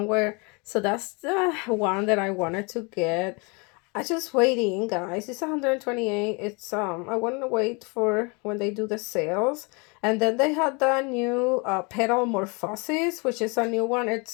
So that's the one that I wanted to get. I just waiting, guys. It's 128. It's I want to wait for when they do the sales. And then they had the new Petal Morphosis, which is a new one.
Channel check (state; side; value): quieter; right; 30.9 dB